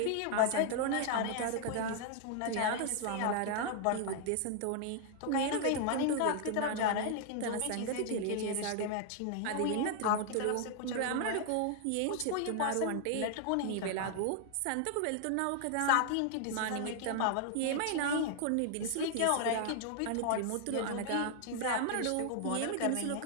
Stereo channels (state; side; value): different; both; correlation 0.00